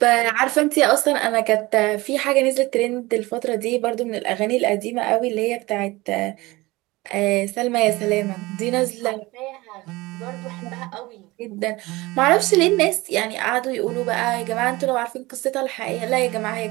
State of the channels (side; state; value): left; quieter; 21.1 dB